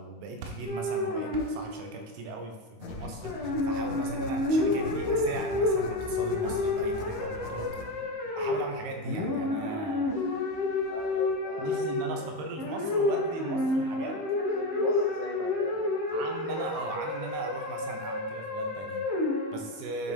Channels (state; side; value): late; left; 19 ms